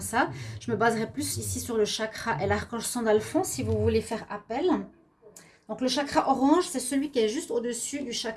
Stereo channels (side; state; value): both; identical; correlation 1.00